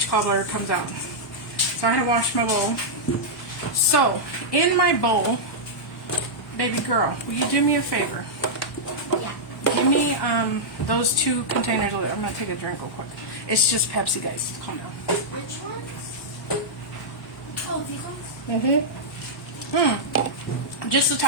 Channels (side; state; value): both; normal; correlation -0.08